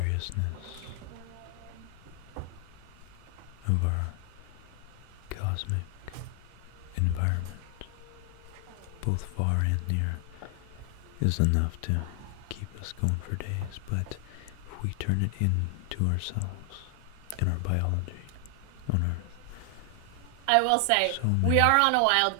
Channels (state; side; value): different; both; correlation 0.00